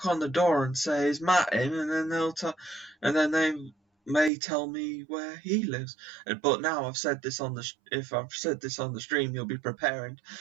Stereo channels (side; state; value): left; drops out; at 4.3 s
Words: on the door and say, "Is Matt in?" and then they may tell me where he lives. But now I've said this on if I've said this on the stream, you'll be preparing